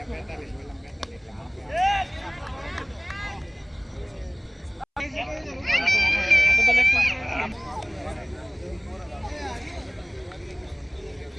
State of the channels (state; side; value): identical; both; correlation 1.00